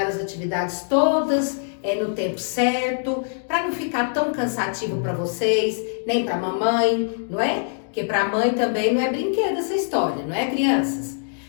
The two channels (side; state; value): right; silent; digital silence